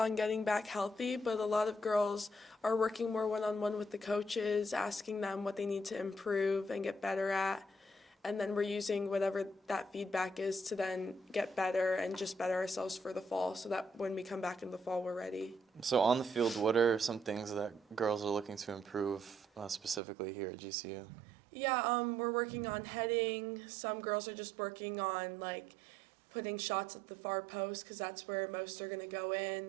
getting back healthy, but a lot of girls are working more one on one with the coaches, asking them what they need to improve and get better at. And then we're using whatever that feedback is to then get better and just better ourselves for the fall so that when we come back in the fall, we're ready. So on the field, what are some things that girls are looking to improve specifically here at GCU? Yeah, we're working on heading. Some girls are just working on like putting shots at the far post because that's where most are going to go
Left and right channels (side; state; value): left; drops out; at 20.0 s